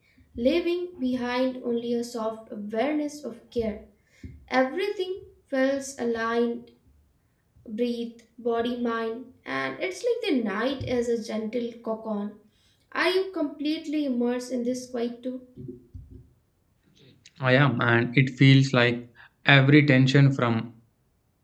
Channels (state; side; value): identical; both; correlation 1.00